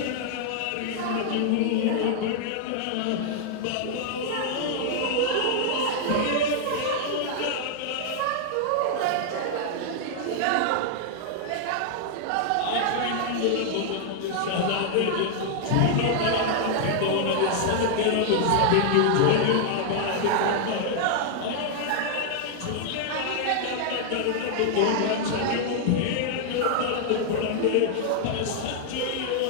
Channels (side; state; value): both; different; correlation -0.01